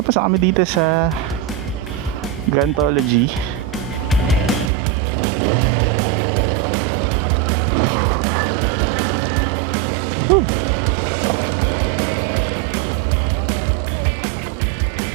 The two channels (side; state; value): left; drops out; at 4.7 s